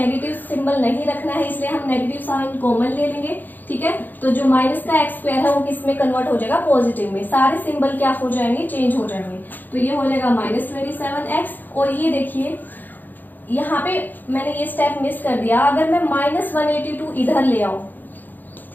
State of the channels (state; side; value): late; right; 0.087 ms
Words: सिंबल नहीं रखना है, इसलिए हम नेगेटिव साइन कॉमन ले लेंगे, ठीक है। तो जो माइनस का एक्स स्क्वायर है वो किस में कन्वर्ट हो जाएगा, पॉजिटिव में। सारे सिंबल क्या हो जाएंगे, चेंज हो जाएंगे। तो ये हो जाएगा माइनस 27x। और ये देखिए यहाँ पे मैंने ये स्टेप मिस कर दिया, अगर मैं माइनस 182 इधर ले आऊं,